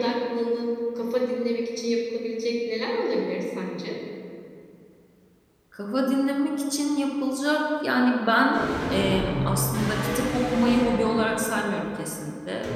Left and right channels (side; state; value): both; identical; correlation 1.00